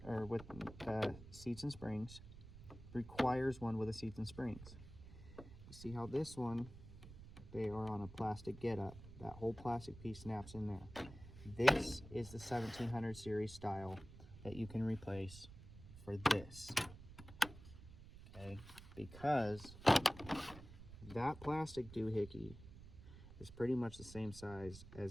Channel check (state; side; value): noise; right; rumble, 15 dB below the sound